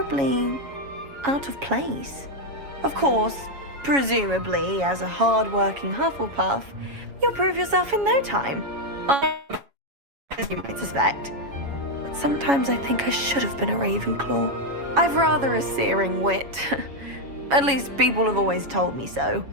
out of place. Of course, presumably, as a hard-working Hufflepuff, you'll prove yourself in no time. As you might suspect. But sometimes I think I should have been a Ravenclaw. I've rather a searing wit. At least people have always told me so.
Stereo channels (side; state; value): left; late; 7.2 ms